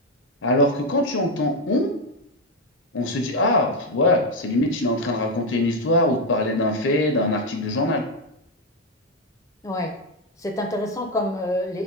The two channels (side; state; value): both; normal; correlation 0.07